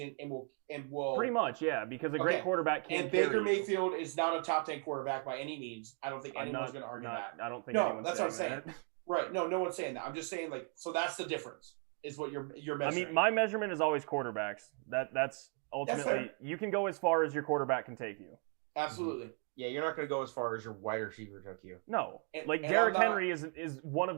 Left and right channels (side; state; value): left; quieter; 38.5 dB